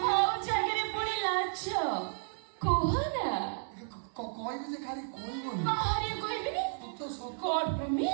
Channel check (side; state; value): left; silent; digital silence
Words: ଆଉ ଜାଗାରେ ପୁଣି ଲାଜ କୁହ ନା। କହିବି ଯେ ଖାଲି କହିବନି। ବାହାରେ କହିବିନି। God